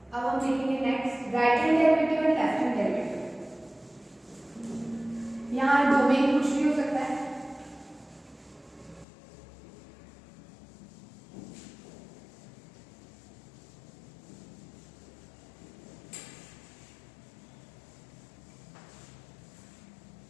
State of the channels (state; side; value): drops out; right; at 9.1 s